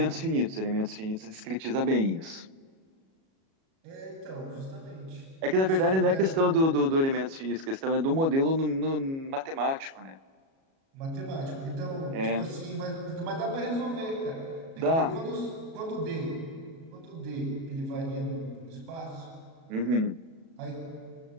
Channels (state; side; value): late; left; 37 ms